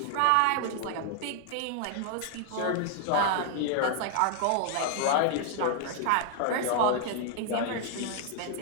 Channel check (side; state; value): both; different; correlation 0.00